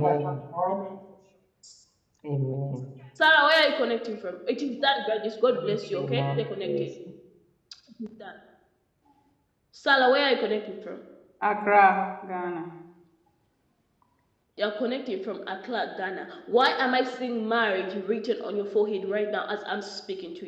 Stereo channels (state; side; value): identical; both; correlation 1.00